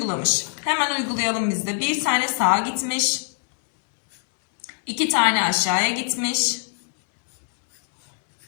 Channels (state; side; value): silent; right; digital silence